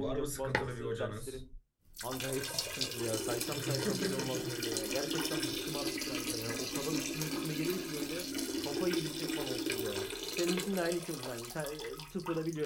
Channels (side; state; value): both; identical; correlation 1.00